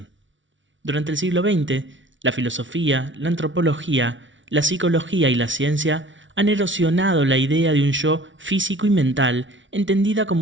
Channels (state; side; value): late; left; 0.56 ms